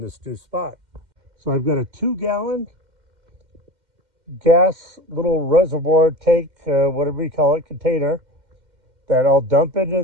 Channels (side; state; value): left; late; 2.1 ms